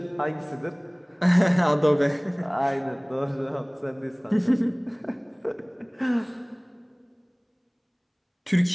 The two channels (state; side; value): identical; both; correlation 1.00